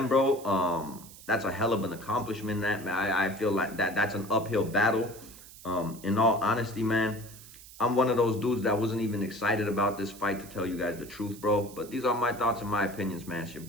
bro. That's a hell of an accomplishment. That I feel like that's an uphill battle. In all honesty, man, I'm one of those dudes that wasn't even excited about this fight, to tell you guys the truth, bro. But these are my thoughts and my opinions, man. It's your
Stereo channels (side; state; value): right; noise; hiss, 18 dB below the sound